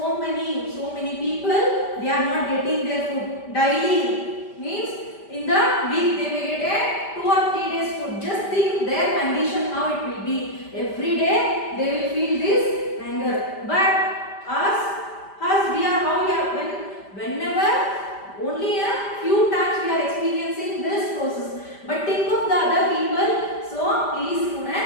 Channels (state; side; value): late; right; 5.1 ms